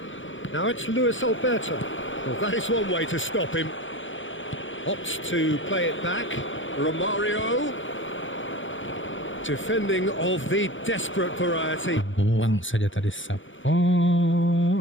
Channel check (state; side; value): late; right; 0.56 ms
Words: Now it's Luis Alberto. Well, that is one way to stop him. Opts to play it back. Romario. Defending of the desperate variety. Buang saja tadi